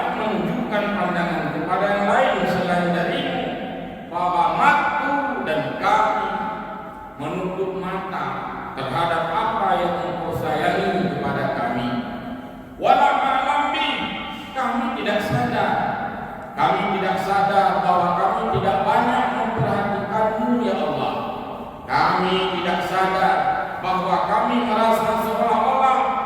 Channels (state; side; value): identical; both; correlation 1.00